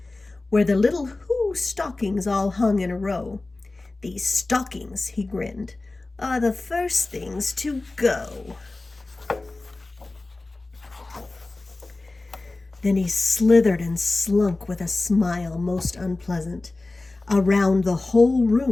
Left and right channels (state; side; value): quieter; right; 3.1 dB